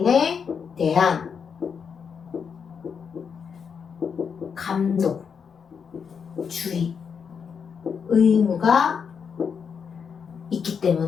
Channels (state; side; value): quieter; right; 6.5 dB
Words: 대한 감독, 주의, 의무가 있기